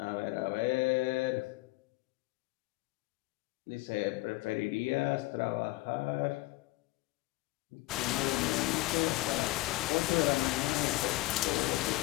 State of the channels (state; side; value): quieter; right; 20.3 dB